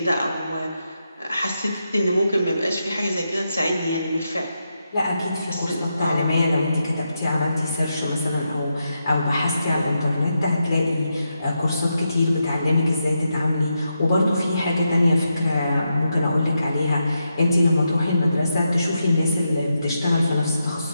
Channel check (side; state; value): both; inverted; correlation -0.85